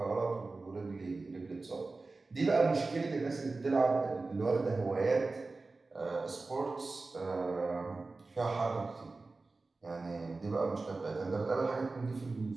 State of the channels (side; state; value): left; quieter; 3.6 dB